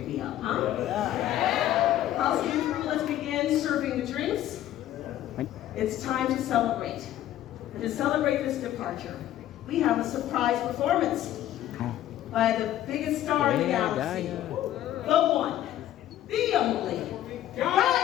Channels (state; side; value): quieter; right; 12.8 dB